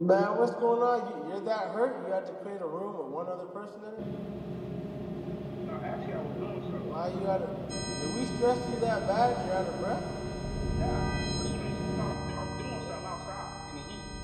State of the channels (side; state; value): both; identical; correlation 1.00